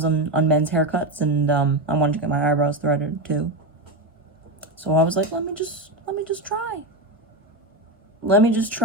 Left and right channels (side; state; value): both; normal; correlation 0.14